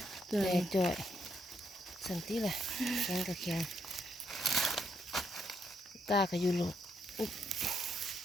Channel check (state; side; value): normal; both; correlation 0.76